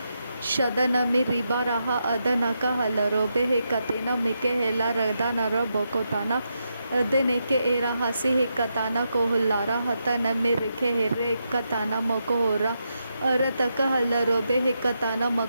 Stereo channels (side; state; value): both; inverted; correlation -0.84